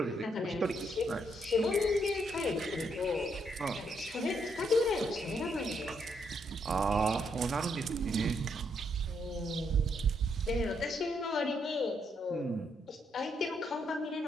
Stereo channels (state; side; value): normal; both; correlation 0.75